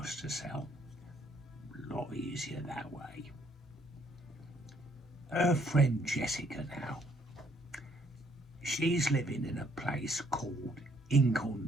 to sell. A lot easier that way. Her friend Jessica now, she's living in a place called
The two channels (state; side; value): normal; both; correlation 0.67